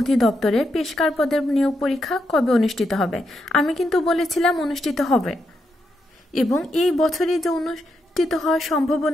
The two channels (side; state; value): both; normal; correlation 0.82